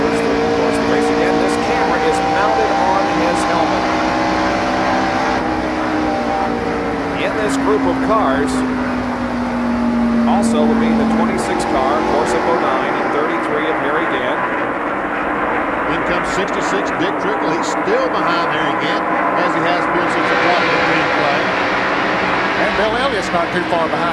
through the course of the race. Again, this camera is mounted on his helmet. In this group of cars also would be the 26 car, of course, of Bodine, and 33 of Harry Gant. In comes 66, Dick Trickle. He's still behind Harry Gant, as he has been since the top of the green flag. And Bill Elliott's not too far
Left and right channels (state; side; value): identical; both; correlation 1.00